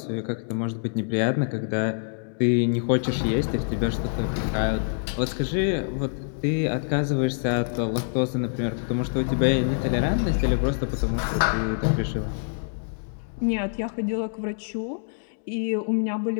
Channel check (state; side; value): silent; right; digital silence